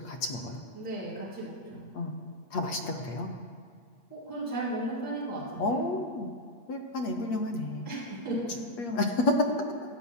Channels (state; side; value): late; right; 8.5 ms